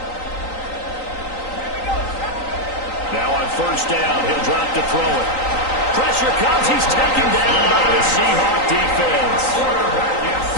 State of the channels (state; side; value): late; right; 3.9 ms